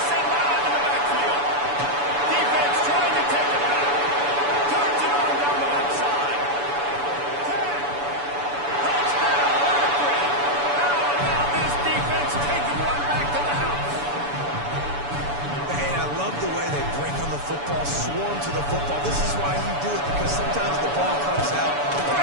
and loud in the backfield. Defense trying to take it back. Turns it on down the left side. 10. Touchdown, Akron. How about this defense taking one back to the house? Hey, I love the way they break on the football, swarm to the football. This is why you do it, because sometimes the ball comes out, the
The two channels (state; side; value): late; left; 7.0 ms